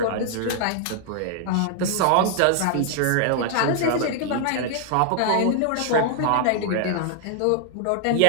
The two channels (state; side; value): different; both; correlation -0.01